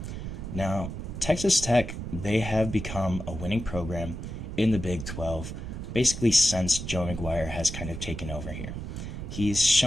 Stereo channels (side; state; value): right; noise; rumble, 7 dB below the sound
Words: Now, Texas Tech, they have become a winning program in the Big 12, basically since Joey McGuire has kind of taken over here. He's